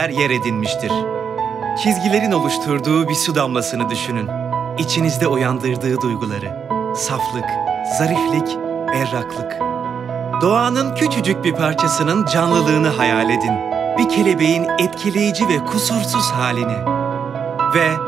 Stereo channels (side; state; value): left; quieter; 7.0 dB